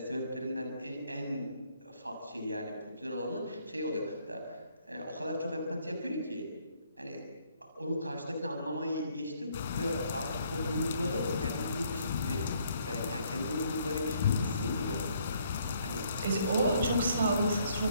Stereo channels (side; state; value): both; inverted; correlation -0.67